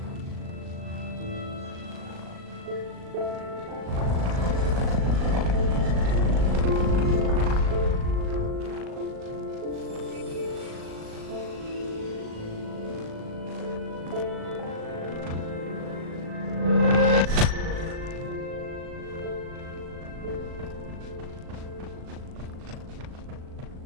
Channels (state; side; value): late; left; 38 ms